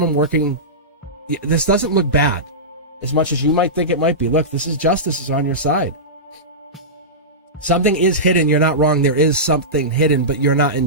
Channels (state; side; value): normal; both; correlation -0.17